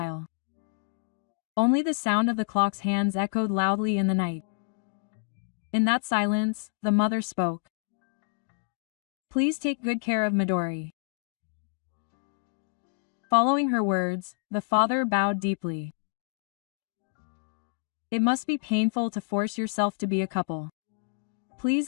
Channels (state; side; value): silent; right; digital silence